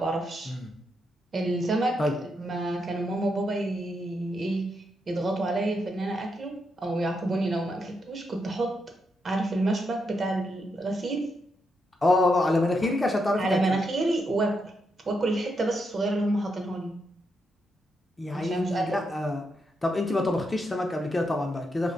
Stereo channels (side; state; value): both; normal; correlation 0.82